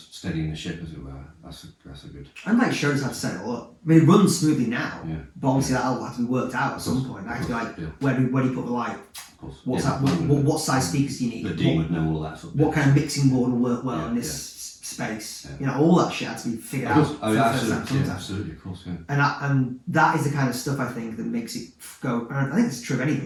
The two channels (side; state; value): both; identical; correlation 1.00